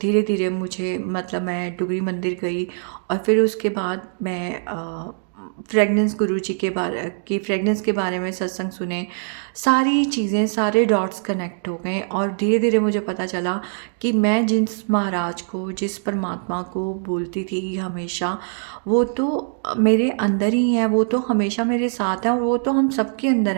धीरे मुझे, मतलब मैं डुगरी मंदिर गई और फिर उसके बाद मैं फ्रेगनेंस गुरुजी के बारे में सत्संग सुने, सारी चीज़ें, सारे डॉट्स कनेक्ट हो गए। और धीरे धीरे मुझे पता चला कि मैं जिस महाराज को, जिस परमात्मा को बोलती थी हमेशा, वो तो मेरे अंदर ही है, वो तो हमेशा मेरे साथ है, और वो तो हम सबके अंदर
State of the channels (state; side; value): silent; left; digital silence